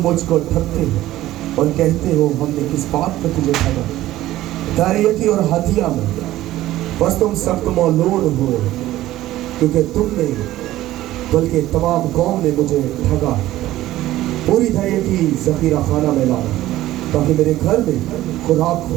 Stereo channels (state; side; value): quieter; left; 15.2 dB